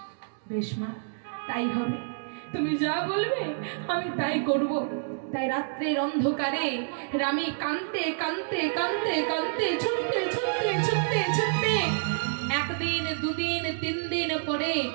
বেশ মা, তাই হবে, তুমি যা বলবে আমি তাই করব। তাই রাত্রের অন্ধকারে রামী কাঁদতে ছুটতে একদিন দুদিন 3 দিন পরে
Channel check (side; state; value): left; silent; digital silence